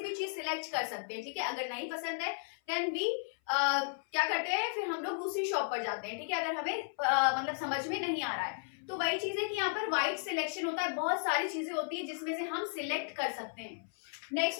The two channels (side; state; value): right; silent; 55 dB below the other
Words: भी चीज सिलेक्ट कर सकते हैं, ठीक है। अगर नहीं पसंद है देन वी क्या करते हैं, फिर हम लोग दूसरी शॉप पर जाते हैं, ठीक है, अगर हमें मतलब समझ में नहीं आ रहा है। तो वही चीज है कि यहाँ पर वाइड सिलेक्शन होता है, बहुत सारी चीजें होती है जिसमें से हम सिलेक्ट कर सकते हैं। Next